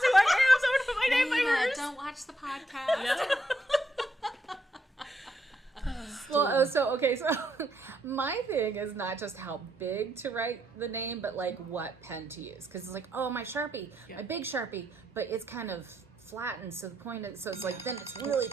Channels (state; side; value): normal; both; correlation 0.77